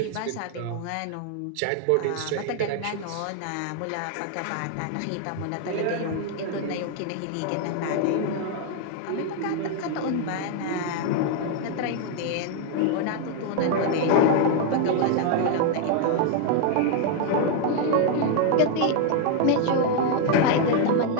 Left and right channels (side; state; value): both; different; correlation 0.00